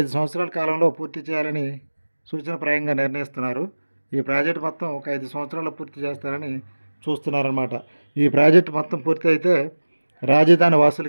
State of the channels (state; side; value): inverted; both; correlation -1.00